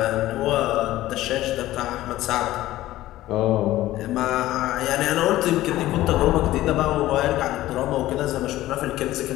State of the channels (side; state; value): right; quieter; 15.5 dB